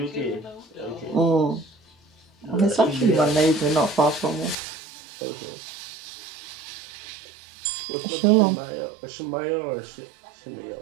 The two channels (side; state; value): left; drops out; at 4.5 s